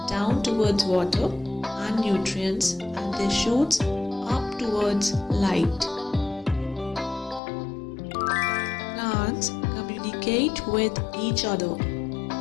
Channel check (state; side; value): drops out; right; at 7.4 s